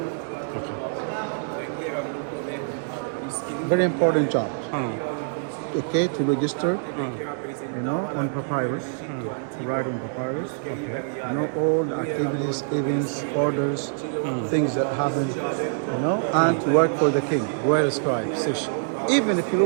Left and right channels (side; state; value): left; silent; 62 dB below the other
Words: Okay. Very important job. Okay, to register, you know, on papyrus, write on papyrus. Okay. You know, all the activities, events, orders, things that happen, you know, and to work for the king, royal scribe, Sish. Even if you